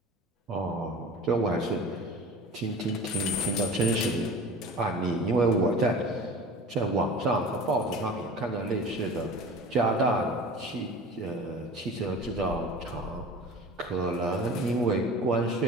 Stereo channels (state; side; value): normal; both; correlation 0.38